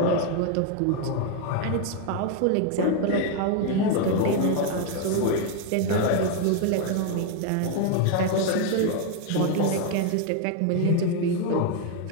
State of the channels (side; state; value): both; different; correlation 0.01